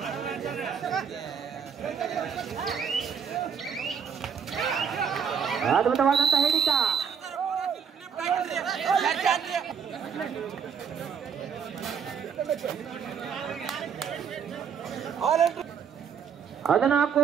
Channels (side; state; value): left; quieter; 7.0 dB